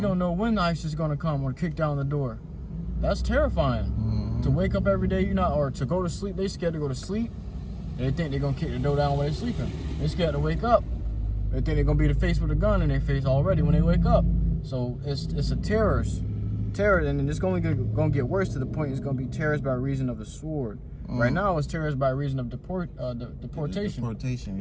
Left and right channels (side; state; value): both; identical; correlation 1.00